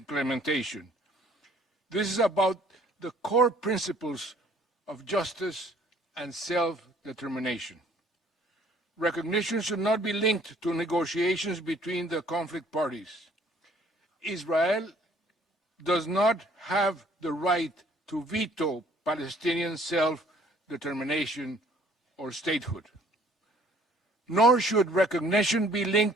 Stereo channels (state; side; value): normal; both; correlation 0.58